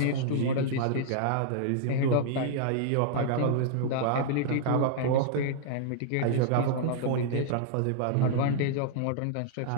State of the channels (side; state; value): both; different; correlation -0.01